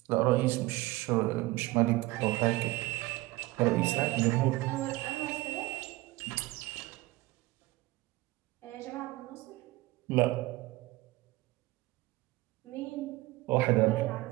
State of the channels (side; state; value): left; quieter; 20.2 dB